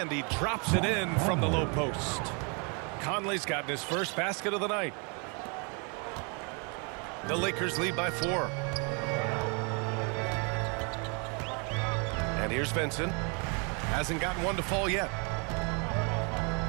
he drops it in from the low post. Conley's gotten his first basket of the night. The Lakers lead by 4. And here's Vincent. Hasn't gotten one to fall yet.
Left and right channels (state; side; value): quieter; left; 34.7 dB